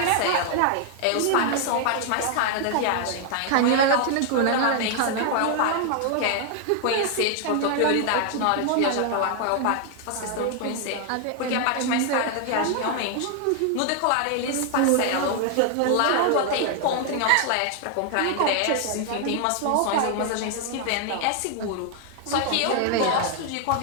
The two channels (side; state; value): both; different; correlation 0.00